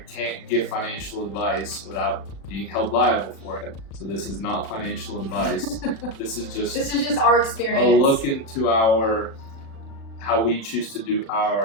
can't give financial advice without being held liable for it. So this is not financial advice. This is just our experience. a look into how we choose to do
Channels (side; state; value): right; late; 36 ms